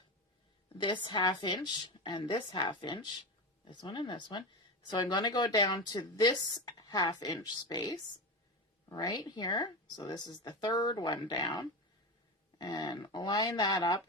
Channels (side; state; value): both; normal; correlation 0.20